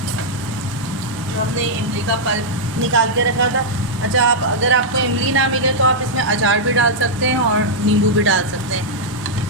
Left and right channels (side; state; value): both; normal; correlation -0.06